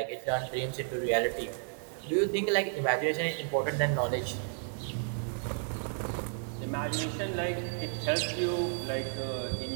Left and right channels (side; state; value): left; silent; 56 dB below the other